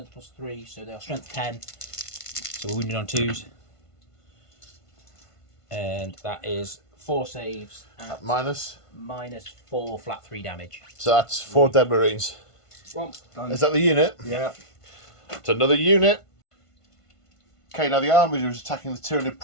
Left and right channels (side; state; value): right; late; 1.5 ms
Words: plus 3, so they are strength 10. So we're wounded on 2s. And that is 4 saves at Minus. -4 flat 3 damage. So that's 4 dead Marines. Well, done. Is that the unit? Yeah. It's another unit. Okay, now the Armiger is attacking the Tyranid